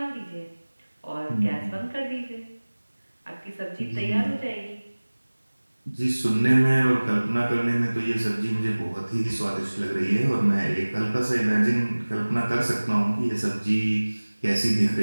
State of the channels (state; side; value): inverted; both; correlation -1.00